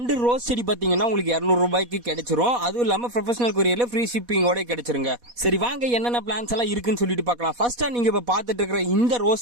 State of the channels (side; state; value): left; late; 4.1 ms